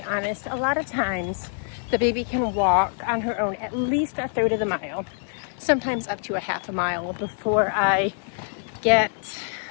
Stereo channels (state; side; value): silent; right; digital silence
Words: honest, a lot of times the baby can walk on her own at least 1/3 of the mile, sometimes up to 1/2 mile before I get